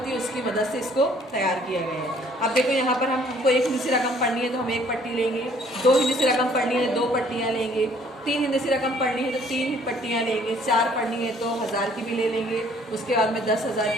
है उसकी मदद से इसको तैयार किया गया है। अब देखो, यहाँ पर हमको एक हिंदी से रकम पढ़नी है तो हम एक पट्टी लेंगे, दो हिंदी से रकम पढ़नी है 2 पट्टियाँ लेंगे, 3 हिंदी से रकम पढ़नी है तो 3 पट्टियाँ लेंगे, 4 पढ़नी है तो 1000 की भी ले लेंगे, उसके बाद में 10,000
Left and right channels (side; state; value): both; normal; correlation 0.60